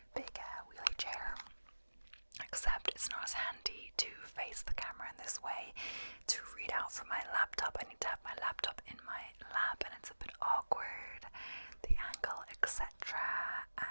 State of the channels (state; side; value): inverted; both; correlation -1.00